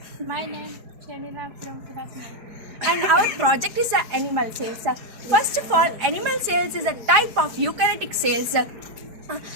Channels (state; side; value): late; left; 4.7 ms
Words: My name Shamila from class 9. And our project is animal cells. First of all, animal cells is a type of eukaryotic cells.